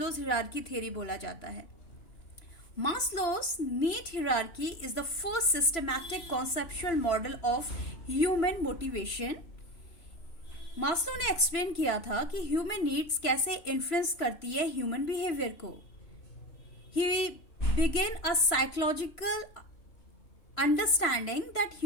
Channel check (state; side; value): late; right; 3.0 ms